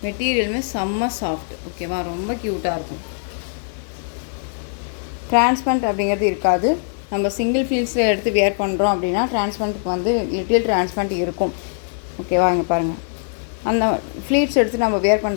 மெட்டீரியலுமே செம்ம சாஃப்ட். ஓகேவா, ரொம்ப க்யூட்டாக இருக்கும். டிரான்ஸ்பரண்ட் அப்படிங்கிறது இருக்காது. நம்ம சிங்கிள் ஃபீல்ஸில் எடுத்து வியர் பண்ணுறோம் அப்படின்னா டிரான்ஸ்பரண்ட்டுக்கு வந்து லிட்டில் டிரான்ஸ்பரண்ட் இருக்கும். ஓகேவா, இங்கே பாருங்கள், அந்த ஃப்ளீட்ஸ் எடுத்து நம்ம வியர்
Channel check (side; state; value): right; silent; digital silence